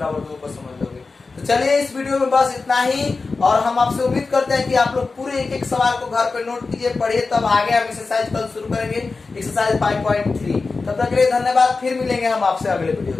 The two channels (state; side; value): quieter; right; 4.1 dB